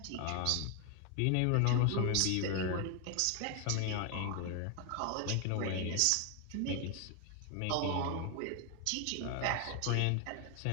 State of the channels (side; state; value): both; different; correlation 0.01